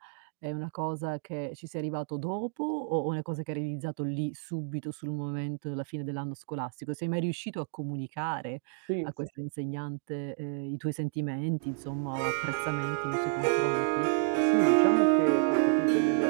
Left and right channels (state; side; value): silent; left; digital silence